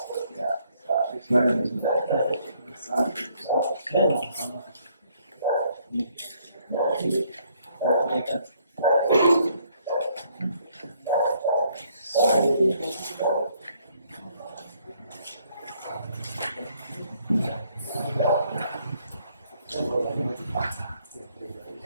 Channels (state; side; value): inverted; both; correlation -0.68